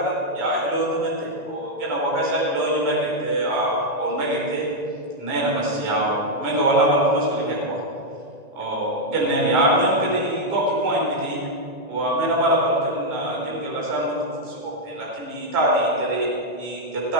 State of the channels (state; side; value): late; left; 1.9 ms